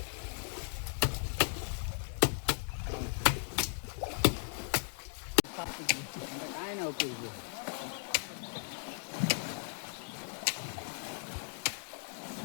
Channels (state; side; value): silent; right; 53 dB below the other